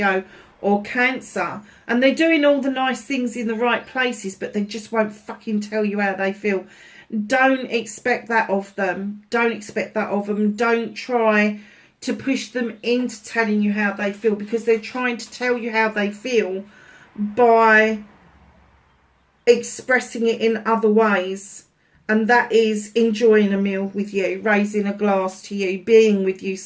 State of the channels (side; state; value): both; identical; correlation 1.00